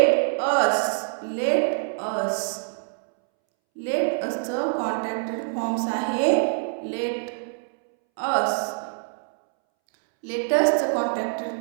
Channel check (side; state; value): left; silent; 62 dB below the other